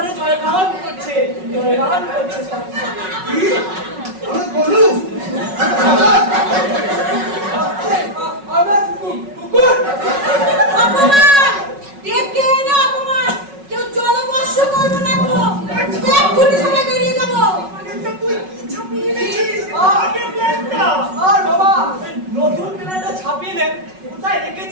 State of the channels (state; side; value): late; left; 5.4 ms